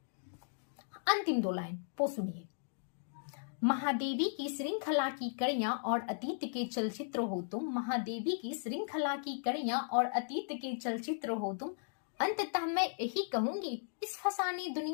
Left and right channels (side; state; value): right; silent; digital silence